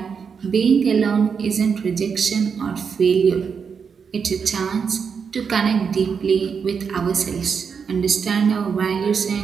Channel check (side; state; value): left; quieter; 6.2 dB